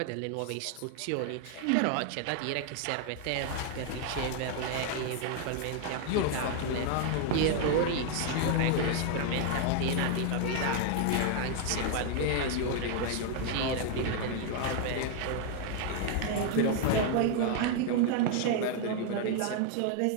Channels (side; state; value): both; different; correlation 0.00